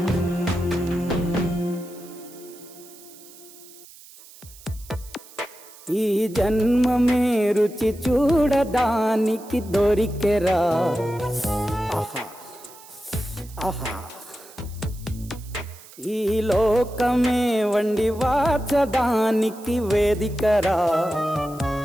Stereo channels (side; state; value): right; noise; hiss, 21 dB below the sound